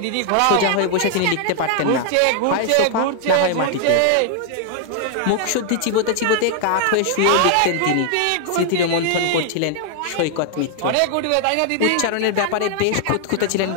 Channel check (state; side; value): different; both; correlation 0.00